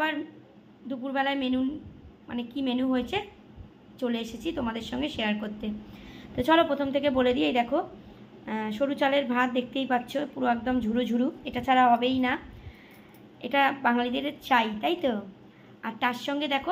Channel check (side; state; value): both; identical; correlation 1.00